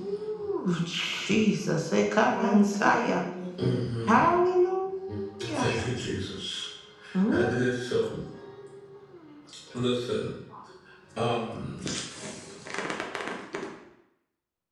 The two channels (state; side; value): identical; both; correlation 1.00